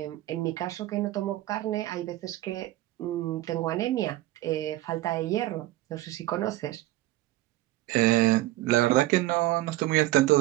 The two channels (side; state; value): left; quieter; 16.6 dB